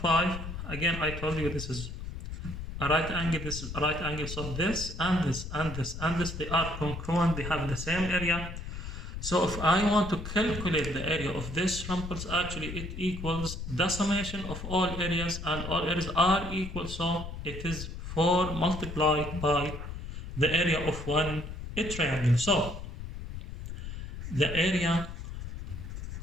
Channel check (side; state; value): left; noise; rumble, 8 dB below the sound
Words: 5. Again, I told you this is a right angle, this is a right angle. So this and this and this and this, they are congruent. They have the same area. So if I want to calculate the area of this rhombus, actually it equals the summation of all areas, and all areas are equal. So it is 4 multiplied by the area of one triangle. So the area